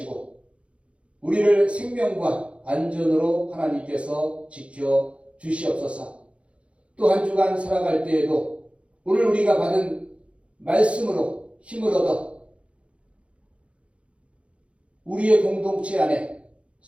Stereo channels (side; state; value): left; late; 0.061 ms